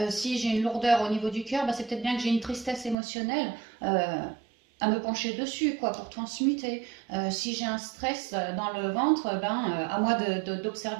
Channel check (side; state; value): left; drops out; at 3.0 s